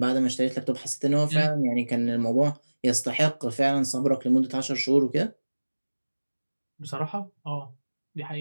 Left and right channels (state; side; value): inverted; both; correlation -1.00